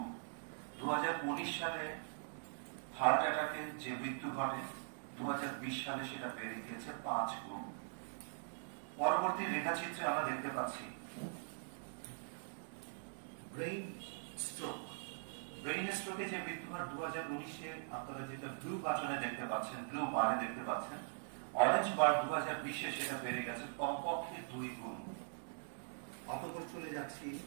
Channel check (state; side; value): silent; left; digital silence